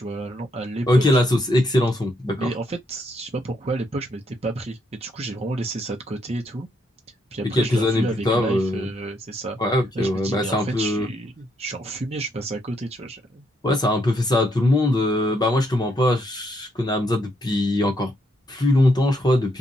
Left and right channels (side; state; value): both; normal; correlation 0.75